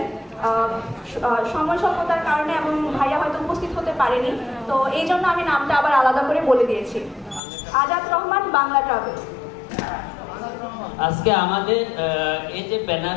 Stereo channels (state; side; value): drops out; right; at 7.4 s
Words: সময় স্বল্পতার কারণে এবং ভাইয়া হয়তো উপস্থিত হতে পারেনি, তো এই জন্য আমি নামটা আবার আলাদা করে বলে দিয়েছি। আজাদ রহমান, বাংলা ট্রাভেলস। আজকে আমাদের এই যে